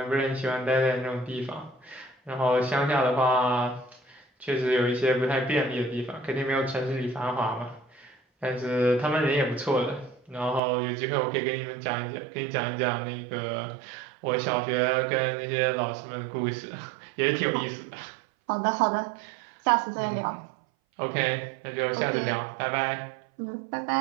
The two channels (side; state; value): left; drops out; at 10.6 s